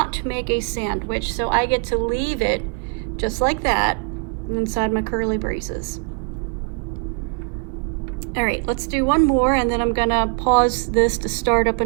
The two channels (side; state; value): left; quieter; 37.1 dB